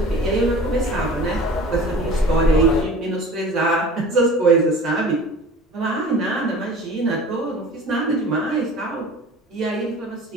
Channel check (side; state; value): both; normal; correlation 0.42